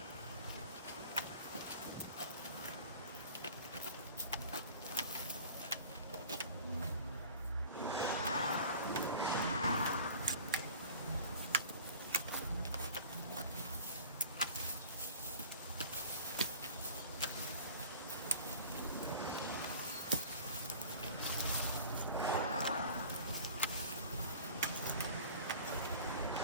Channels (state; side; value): inverted; both; correlation -0.42